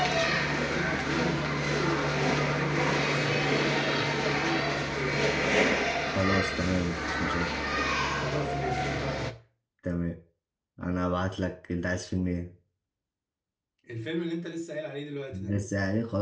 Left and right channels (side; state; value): both; identical; correlation 1.00